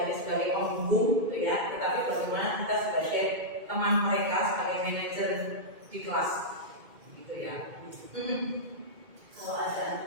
hanya sebagai penghubung, ya, tetapi bagaimana kita sebagai teman mereka, sebagai manajer di kelas, gitu ya. Kalau ada anak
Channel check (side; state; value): left; late; 2.2 ms